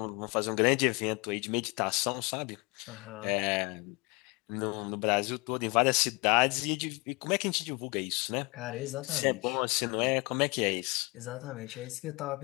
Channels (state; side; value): quieter; right; 27.7 dB